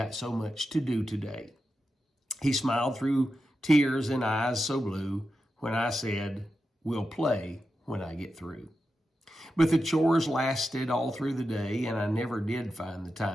so much to do today.' He smiled through tears and eyes so blue when I said, 'We'll play when I get through.' But the chores lasted all through the day, and I never did find the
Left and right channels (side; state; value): both; normal; correlation 0.89